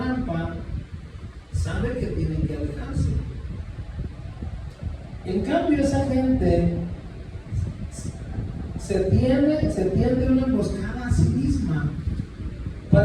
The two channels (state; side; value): identical; both; correlation 1.00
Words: sabe que tiene que alejarse. En cambio, esa gente se tiende una emboscada a sí misma.